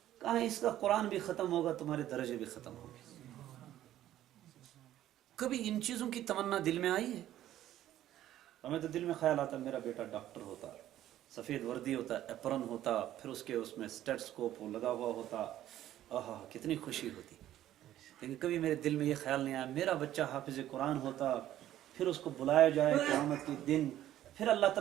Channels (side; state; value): left; quieter; 12.8 dB